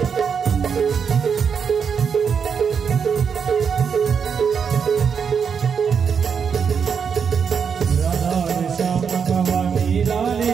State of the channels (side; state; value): left; quieter; 6.6 dB